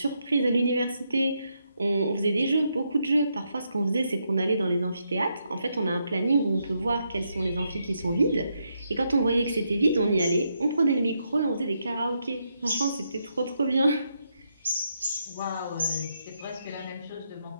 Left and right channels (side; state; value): both; inverted; correlation -0.80